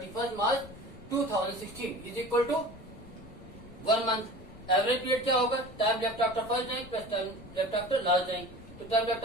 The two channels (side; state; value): left; noise; rumble, 18 dB below the sound